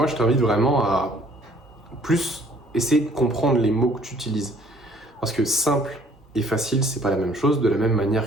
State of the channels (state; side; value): normal; both; correlation 0.59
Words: je t'invite vraiment à plus essayer de comprendre les mots que tu utilises. Parce que simple et facile, c'est pas la même chose, de la même